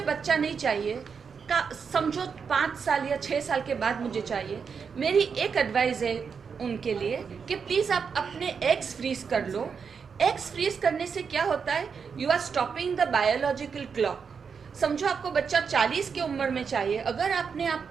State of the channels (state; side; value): quieter; left; 6.1 dB